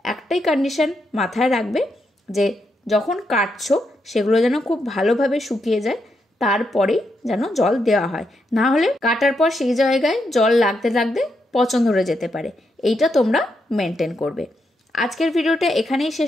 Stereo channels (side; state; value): both; normal; correlation 0.81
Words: একটাই কন্ডিশন মাথায় রাখবে, যে যখন কাটছো সেগুলো যেন খুব ভালোভাবে শুকিয়ে যায়, তারপরেই যেন জল দেওয়া হয়। না হলে কাটার পর সেই জায়গায় জল লাগতে লাগতে পচন ধরে যেতে পারে। এইটা তোমরা মেনটেন করবে। আজকের ভিডিওটা এখানেই